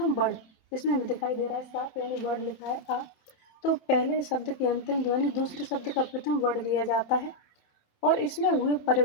वर्ण, जिसमें हमें दिखाई दे रहा है साफ, यानी वर्ण लिखा है आ, तो पहले शब्द की अंतिम ध्वनि दूसरे शब्द का प्रथम वर्ण लिया जाता है, और इसमें हुए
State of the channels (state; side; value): late; right; 27 ms